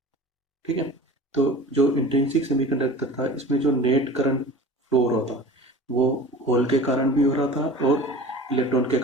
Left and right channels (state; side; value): normal; both; correlation 0.39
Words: ठीक है, तो जो इंट्रिंसिक सेमीकंडक्टर था इसमें जो नेट करंट फ्लो हो रहा था वो होल के कारण भी हो रहा था और इलेक्ट्रॉन के